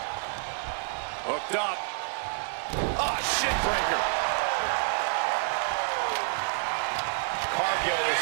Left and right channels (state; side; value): silent; left; digital silence